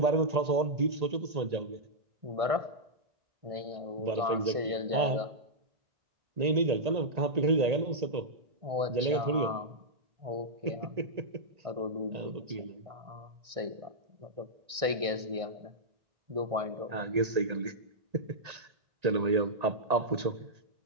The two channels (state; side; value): late; left; 1.6 ms